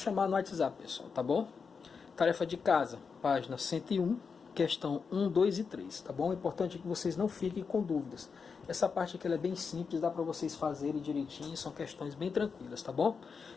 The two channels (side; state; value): right; quieter; 5.5 dB